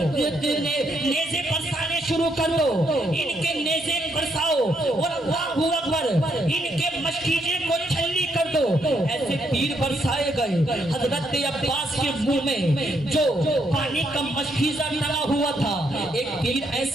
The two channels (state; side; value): normal; both; correlation 0.75